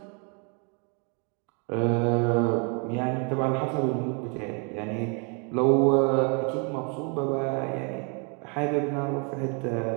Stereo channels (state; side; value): quieter; left; 36.3 dB